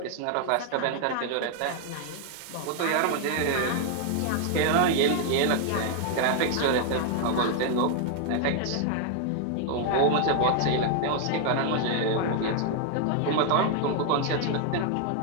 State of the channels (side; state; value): both; different; correlation 0.00